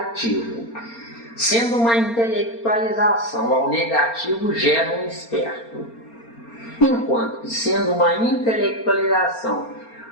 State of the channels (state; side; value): late; right; 4.3 ms